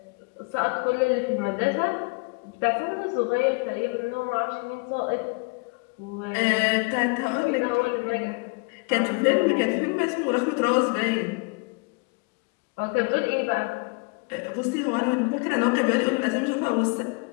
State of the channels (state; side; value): quieter; right; 30.9 dB